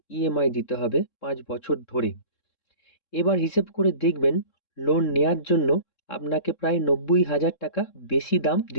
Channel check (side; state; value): right; late; 3.7 ms